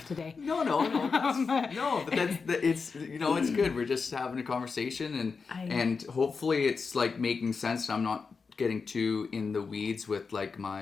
today. No, but it's it's good. We're just having a conversation, and hopefully it's like making sense. I'm not getting too in the weeds with like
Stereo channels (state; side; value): quieter; right; 5.0 dB